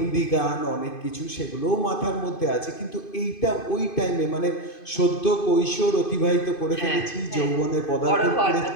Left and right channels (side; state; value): right; late; 2.5 ms